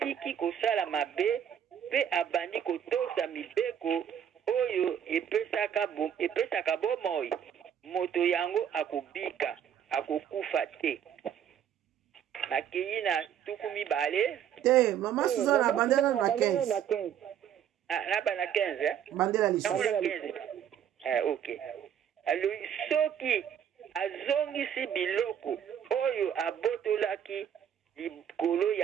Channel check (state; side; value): quieter; left; 9.2 dB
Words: kosala mabe pe abandi kotosa mibeko oyo epesaka bomoi moto yango akobika akokufa te. Nakei na tuku mibale te mama Suzana bandela na 15 na bana 15 bandela lisolo. Ok. Alors soki azongisi biloko oyo abotolaki likolo